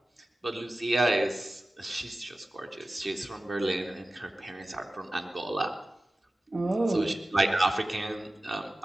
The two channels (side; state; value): both; normal; correlation 0.95